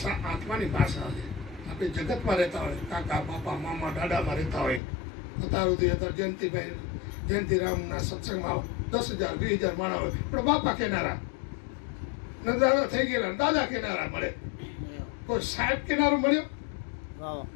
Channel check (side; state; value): right; drops out; at 4.8 s